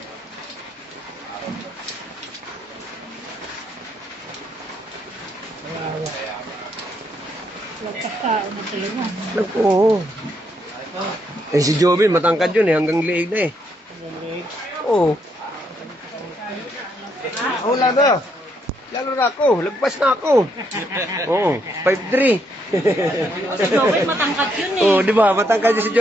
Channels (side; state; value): both; normal; correlation 0.75